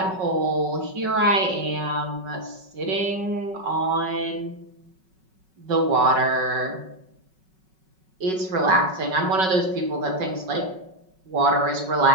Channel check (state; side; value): late; left; 5.3 ms